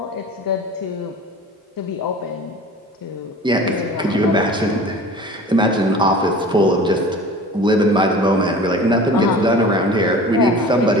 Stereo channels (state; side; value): normal; both; correlation 0.41